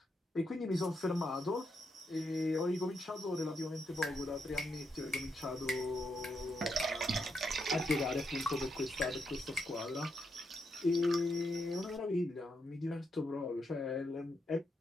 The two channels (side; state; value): both; normal; correlation 0.81